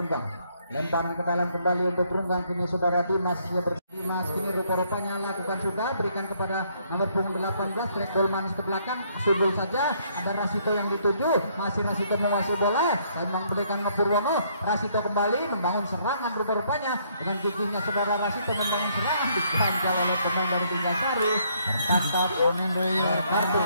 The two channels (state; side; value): inverted; both; correlation -0.68